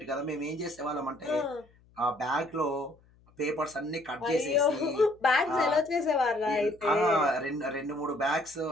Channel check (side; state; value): left; noise; hum, 30 dB below the sound